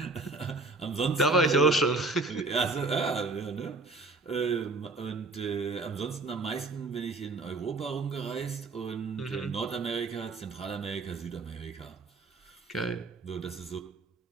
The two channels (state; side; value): quieter; left; 3.4 dB